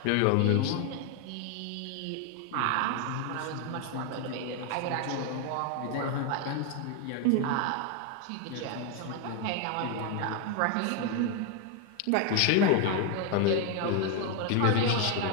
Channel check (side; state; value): both; different; correlation 0.01